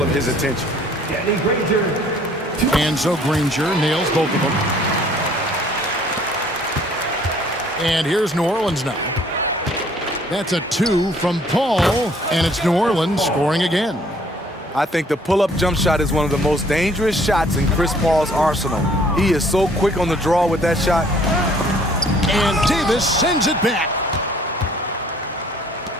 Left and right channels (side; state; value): both; normal; correlation 0.58